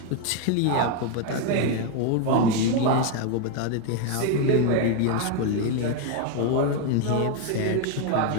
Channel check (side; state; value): both; different; correlation 0.01